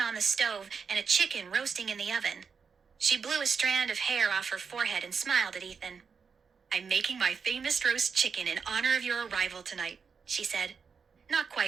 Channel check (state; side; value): quieter; left; 5.8 dB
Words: on the stove and a chicken roasting in the oven. She blew a strand of hair off her forehead and smiled at Ethan. I'm making my famous roast chicken in honor of your arrival tonight, she said. Not